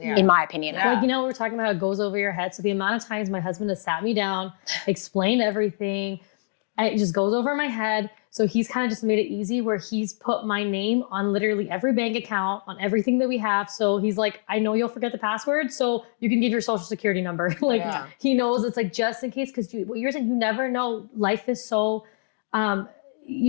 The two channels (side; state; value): right; silent; digital silence